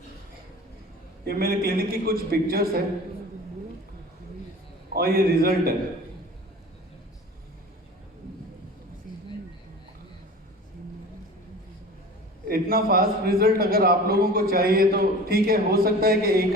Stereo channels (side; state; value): both; normal; correlation 0.39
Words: ये मेरे क्लिनिक की कुछ पिक्चर्स है और ये रिजल्ट है। इतना फास्ट रिजल्ट अगर आप लोगों को चाहिए तो ठीक है, हो सकता है कि